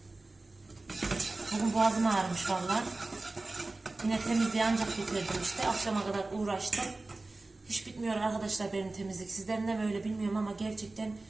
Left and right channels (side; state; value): left; quieter; 3.2 dB